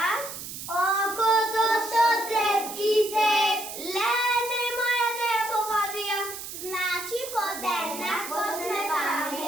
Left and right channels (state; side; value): noise; right; hiss, 9 dB below the sound